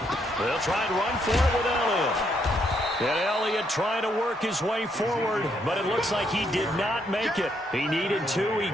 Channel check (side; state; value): both; normal; correlation 0.74